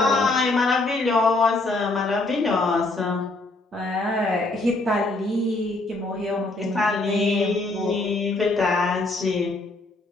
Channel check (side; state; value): right; quieter; 3.0 dB